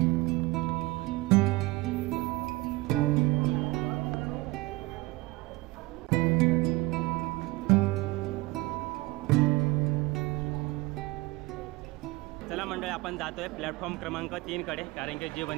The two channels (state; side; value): quieter; left; 21.6 dB